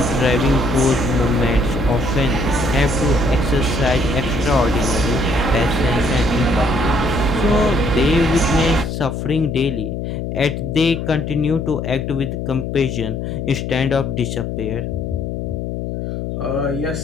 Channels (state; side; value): noise; left; hum, 4 dB below the sound